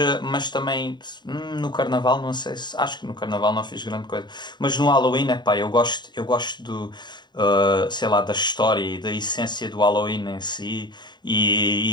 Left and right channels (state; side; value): late; right; 0.21 ms